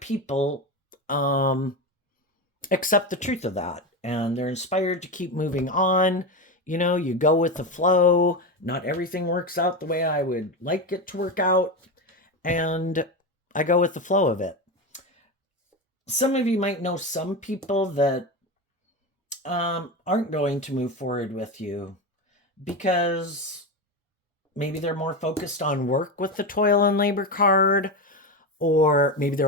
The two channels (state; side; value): normal; both; correlation 0.17